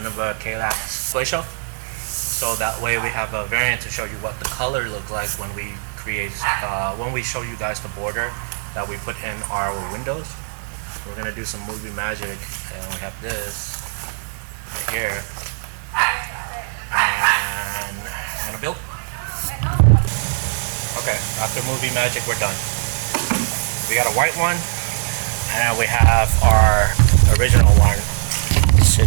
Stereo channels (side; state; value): left; silent; digital silence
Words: Ikea Shelf. So that way we have a variant to show you what the color look like when we when we show you guys the border that we put in our windows. We're gonna do some movie magic, and we have this right here, and I'm gonna build. Okay, after movie magic, we're done. We got a white one, and we have our original one